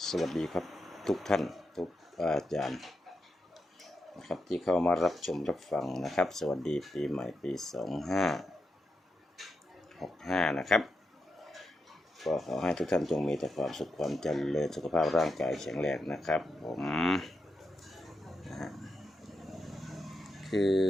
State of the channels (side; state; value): both; normal; correlation 0.85